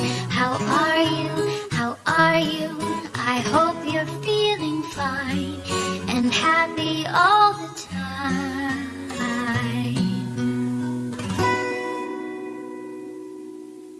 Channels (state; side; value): identical; both; correlation 1.00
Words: How are you? How are you? I hope you're feeling fine and happy all the time.